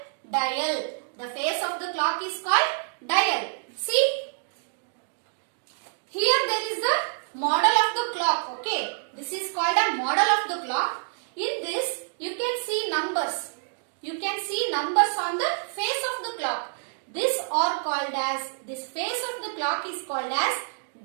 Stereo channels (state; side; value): silent; left; digital silence